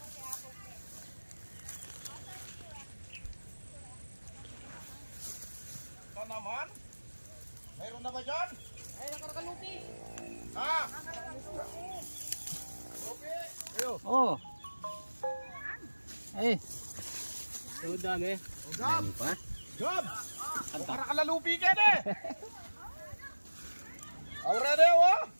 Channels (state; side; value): inverted; both; correlation -1.00